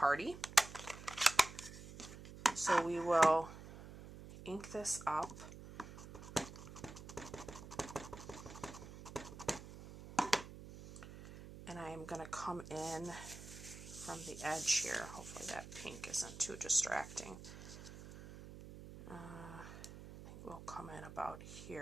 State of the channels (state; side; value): noise; right; hum, 13 dB below the sound